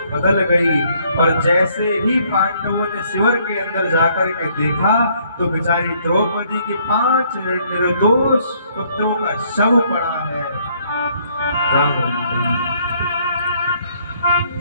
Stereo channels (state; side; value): inverted; both; correlation -0.66